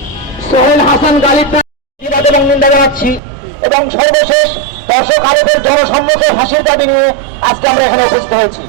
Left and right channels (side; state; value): left; drops out; at 3.2 s